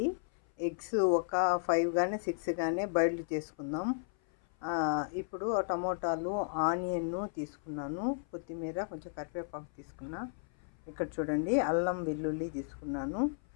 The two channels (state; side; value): silent; right; 55 dB below the other